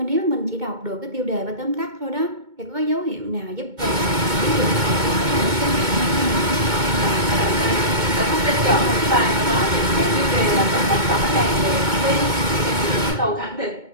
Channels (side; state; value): left; late; 2.2 ms